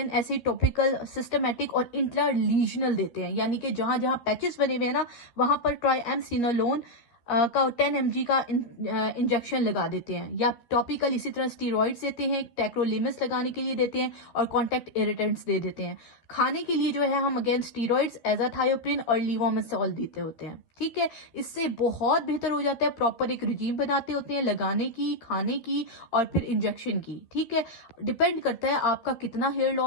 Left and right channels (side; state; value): right; late; 13 ms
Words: ऐसे टॉपिकल, सिस्टमेटिक और इंट्रालीजनल देते हैं, यानी कि जहां जहां पैचेस बने हुए हैं ना, वहां पर ट्राइएमसिनोलोन का 10 mg का इंजेक्शन लगा देते हैं, या टॉपिकल इसी तरह स्टीरॉइड्स देते हैं, टेक्रोलिमस लगाने के लिए देते हैं, और कॉन्टैक्ट इरिटेंट्स दे देते हैं। खाने के लिए जो है हम अगेन स्टीरॉइड्स, एजाथायोप्रिन और लीवोमेसोल देते होते हैं। ठीक है, इससे बहुत बेहतर हो जाता है। प्रॉपर एक रिजीम बनाते होते हैं लगाने की, खाने की और फिर इंजेक्शन की। ठीक है, डिपेंड करता है आपका कितना हेयर